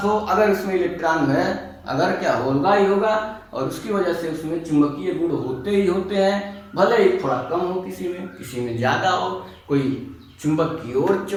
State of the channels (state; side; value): identical; both; correlation 1.00